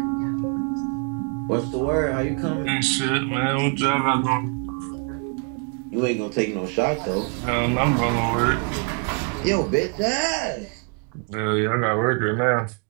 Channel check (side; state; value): left; quieter; 36.8 dB